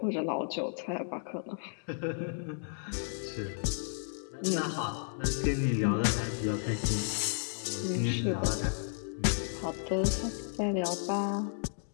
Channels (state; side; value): silent; right; digital silence